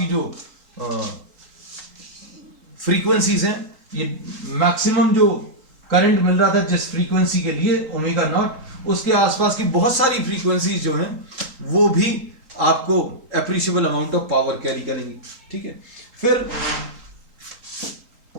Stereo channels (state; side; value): late; left; 3.8 ms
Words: जो फ्रीक्वेंसीज हैं, ये मैक्सिमम जो करंट मिल रहा था जिस फ्रीक्वेंसी के लिए ओमेगा नॉट, उसके आसपास की बहुत सारी फ्रीक्वेंसीज जो हैं वो भी आपको appreciable amount of power carry करेंगी, ठीक है। फिर